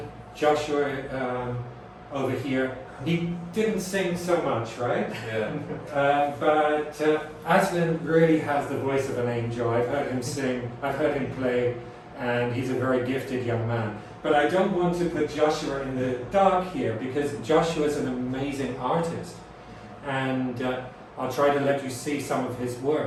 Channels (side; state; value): both; identical; correlation 1.00